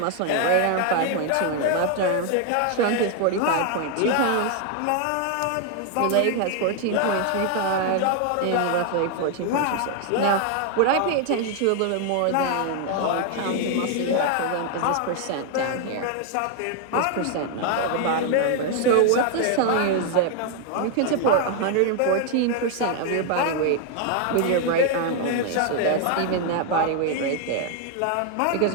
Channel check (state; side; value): different; both; correlation 0.00